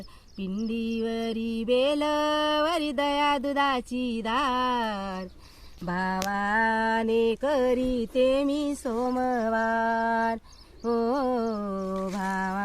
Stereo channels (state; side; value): identical; both; correlation 1.00